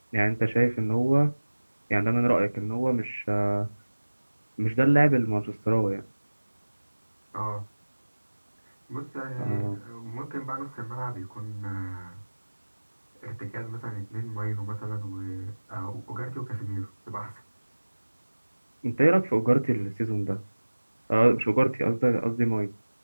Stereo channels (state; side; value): inverted; both; correlation -1.00